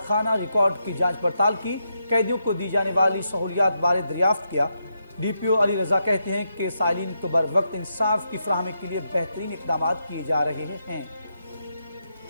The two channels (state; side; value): inverted; both; correlation -0.83